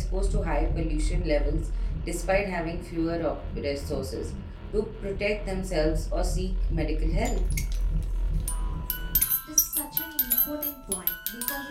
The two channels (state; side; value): identical; both; correlation 1.00